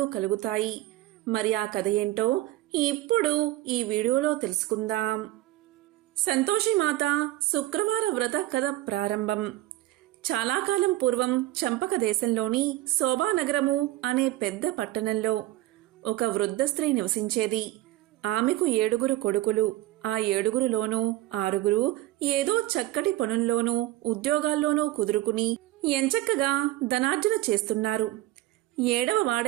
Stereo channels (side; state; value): left; quieter; 16.5 dB